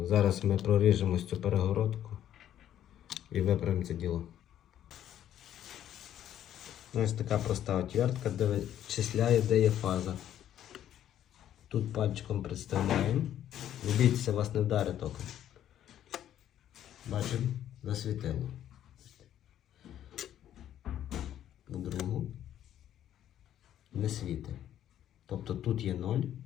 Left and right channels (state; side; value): quieter; right; 11.1 dB